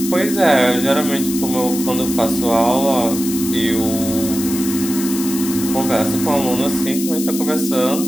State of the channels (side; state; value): left; noise; hiss, 7 dB below the sound